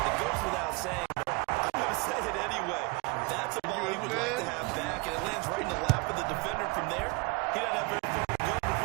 goes without saying, but I'm going to say it anyway. That's a ball he would like to have back, and it lands right in the lap of the defender from there. He doesn't have very far to go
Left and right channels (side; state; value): left; quieter; 27.8 dB